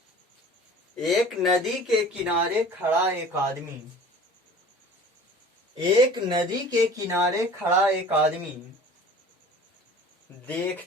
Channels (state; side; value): normal; both; correlation 0.44